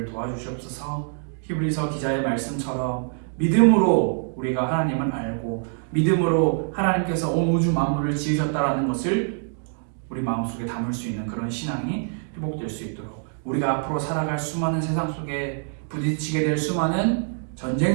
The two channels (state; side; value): silent; left; 62 dB below the other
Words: 도와주시옵소서. 히브리서 기자의 말씀처럼 믿음으로 우리가 하나님을 알고 믿음으로 하나님께서 온 우주 만물을 지으셨다라는 것을 우리 마음속에 담을 수 있는 그런 신앙이 회복될 수 있도록 우리가 앞으로 살아갈 수많은 세상 속에 부딪히게 될 수많은 전쟁